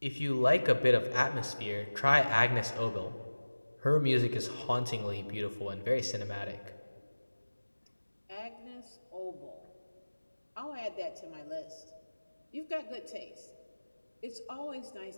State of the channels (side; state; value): both; inverted; correlation -1.00